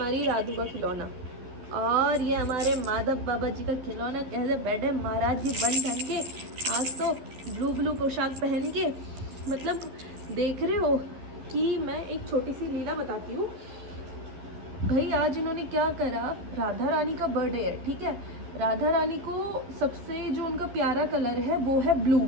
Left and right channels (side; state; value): left; late; 12 ms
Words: राधू का खिलौना और ये हमारे माधव बाबा जी का खिलौना। कैसे बैठे महाराज जी बन ठन के, आज तो ब्लू पोशाक पहन के। मतलब देख रहे हो कि मैं एक छोटी सी लीला बताती हूँ भाई। आज इन्होंने क्या करा, राधा रानी का बर्थडे है, ठीक है। राधा रानी को सबसे जो उनका प्यारा कलर है वो है ब्लू।